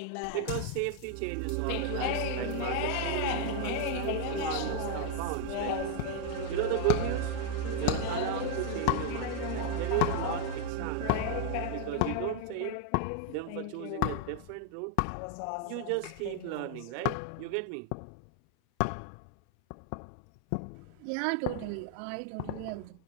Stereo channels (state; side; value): different; both; correlation 0.00